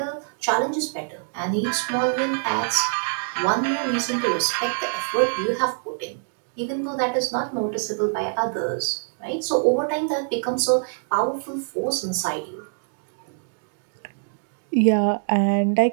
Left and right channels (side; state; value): left; silent; digital silence